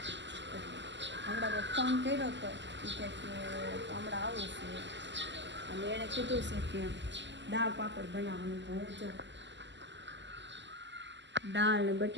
હમણાં મેં ફોન કર્યો હતો કે હમણાં આવું છે, અને એણે કીધું છે કે દાળ પાપડ બનાવવાનું. તો હું જો દાળ ને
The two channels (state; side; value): late; left; 0.53 ms